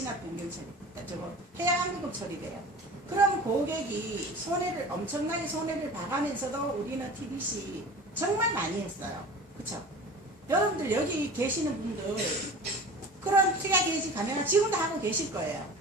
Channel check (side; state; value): both; normal; correlation 0.38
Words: 변경 처리. 저거 해약 환급금 처리돼요. 그럼 고객이 엄청나게 손해를 봐가면서도 우리는 TDC 정말 많이 했어요. 그쵸? 여러분들 여기 계시는 분들 그런 특약 해지 감액을 지금도 하고 계실 거예요.